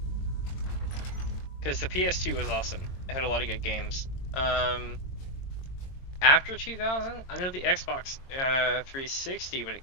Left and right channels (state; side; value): late; right; 22 ms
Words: Because the PS2 was awesome. It had a lot of good games. After 2000, I know the Xbox 360 when it